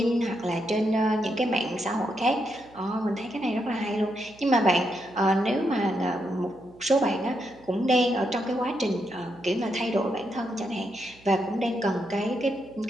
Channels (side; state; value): right; noise; hum, 26 dB below the sound